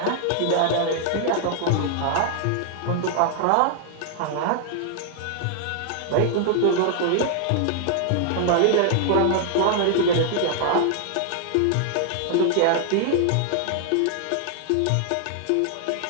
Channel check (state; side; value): different; both; correlation 0.00